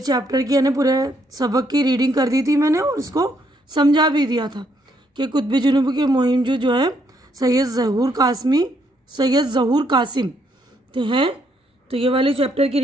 چیپٹر کی یعنی پورے سبق کی ریڈنگ کر دی تھی میں نے، اور اس کو سمجھا بھی دیا تھا کہ قطبی جنوبی کے مہم جو ہے سید ظہور قاسم ہیں۔ تو یہ والے چیپٹر کی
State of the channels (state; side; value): normal; both; correlation 0.72